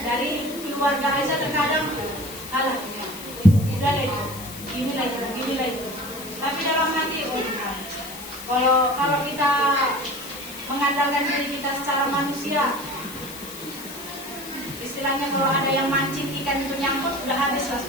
dari keluarga aja terkadang, alah, udah lah itu, gini lah itu. Tapi dalam hati, oh bukan. Kalau kita mengandalkan diri kita secara manusia, istilahnya kalau ada yang mancing ikan itu nyangkut, udah habis lah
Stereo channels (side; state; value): left; noise; hiss, 13 dB below the sound